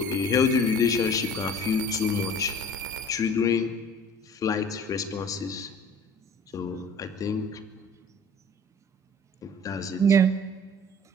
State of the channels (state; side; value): normal; both; correlation 0.47